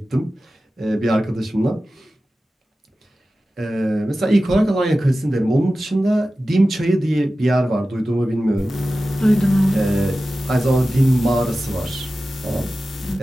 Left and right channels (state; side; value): normal; both; correlation 0.95